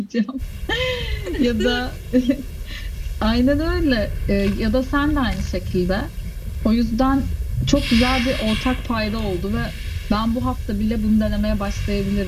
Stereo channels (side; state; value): both; identical; correlation 1.00